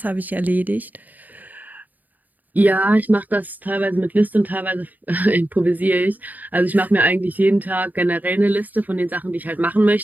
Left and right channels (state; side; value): late; left; 0.083 ms